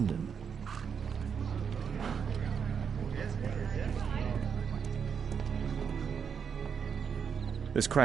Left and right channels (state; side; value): quieter; left; 6.9 dB